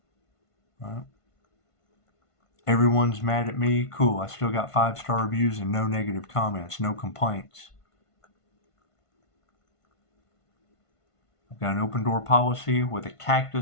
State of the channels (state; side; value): late; right; 1.5 ms